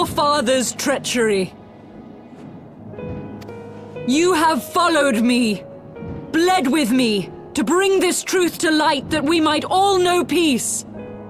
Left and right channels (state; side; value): identical; both; correlation 1.00